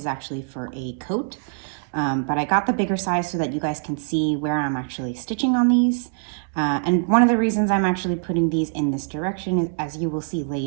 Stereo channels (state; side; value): silent; left; 63 dB below the other